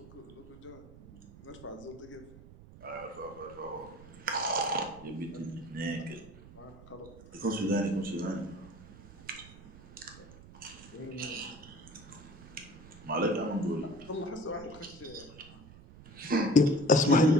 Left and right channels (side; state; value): right; noise; rumble, 19 dB below the sound